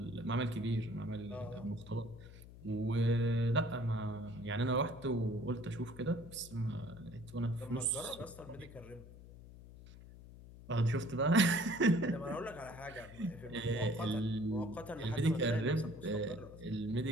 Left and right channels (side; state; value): left; noise; hum, 17 dB below the sound